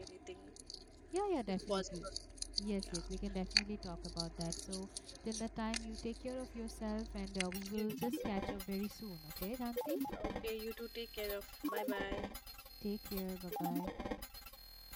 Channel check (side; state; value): both; identical; correlation 1.00